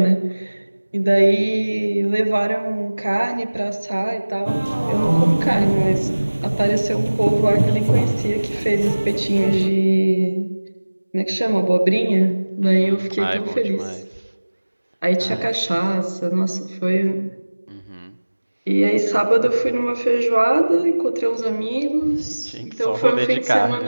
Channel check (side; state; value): both; inverted; correlation -1.00